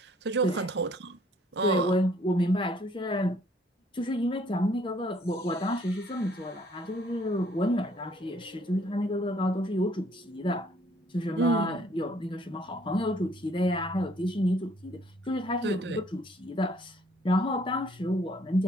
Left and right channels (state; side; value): normal; both; correlation 0.62